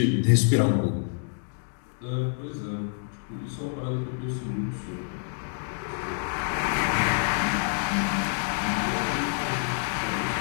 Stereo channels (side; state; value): right; silent; 60 dB below the other